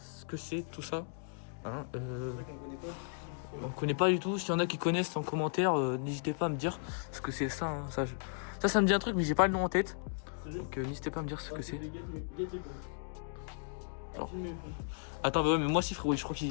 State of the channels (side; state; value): right; silent; digital silence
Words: que c'est, tout ça. Hein, C'est vrai qu'on connaît pas. on connaît pas du tout. S'il y en a qui connaissent en commentaire, n'hésitez pas à me dire ce que c'est ça. Hein. Ça me dit un truc, mais j'ai pas le nom en tête. Sérieux? Donc, n'hésitez pas à me dire ce que c'est. Alors. Attends, bah ouais, mais moi si, frérot, je crois